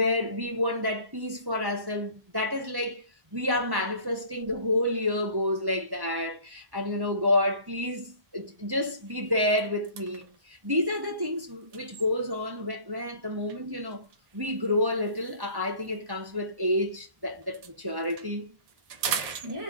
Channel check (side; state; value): left; late; 1.1 ms